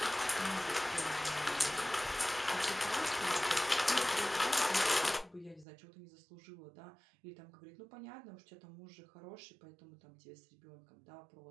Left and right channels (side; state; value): left; drops out; at 5.7 s